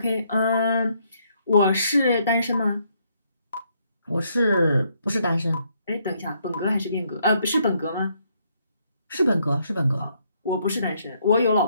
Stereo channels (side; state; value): both; inverted; correlation -0.72